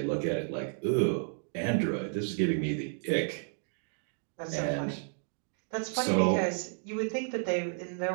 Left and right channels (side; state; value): left; silent; 56 dB below the other